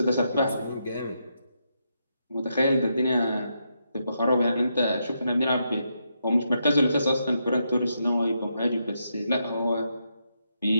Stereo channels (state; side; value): inverted; both; correlation -0.81